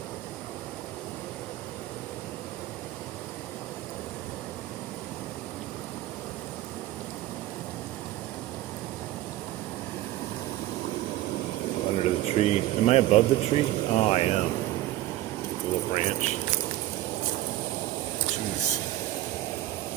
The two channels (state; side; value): quieter; left; 15.5 dB